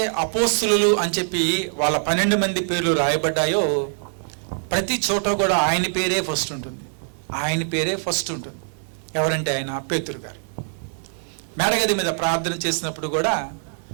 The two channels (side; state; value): left; silent; digital silence